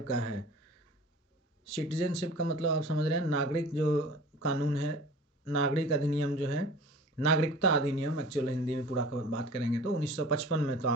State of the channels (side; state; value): both; normal; correlation 0.43